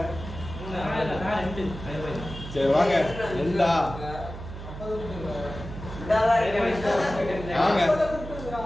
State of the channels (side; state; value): right; noise; hum, 10 dB below the sound